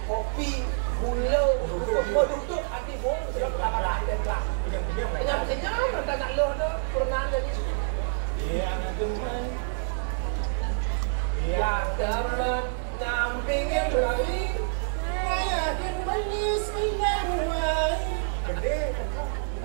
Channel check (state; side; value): silent; left; digital silence